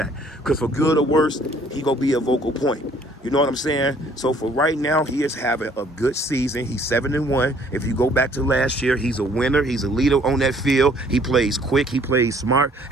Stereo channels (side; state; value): both; normal; correlation 0.60